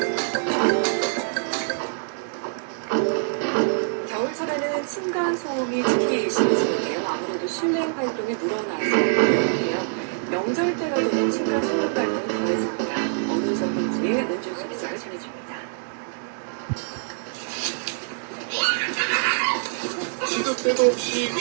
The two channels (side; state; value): left; silent; digital silence